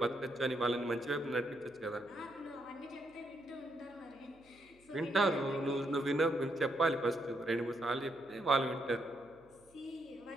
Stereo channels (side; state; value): right; noise; hum, 30 dB below the sound